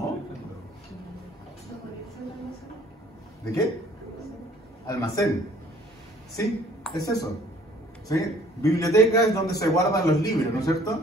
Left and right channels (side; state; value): both; normal; correlation 0.57